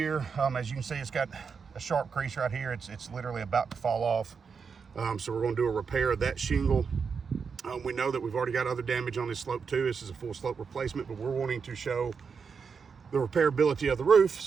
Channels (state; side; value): quieter; left; 5.8 dB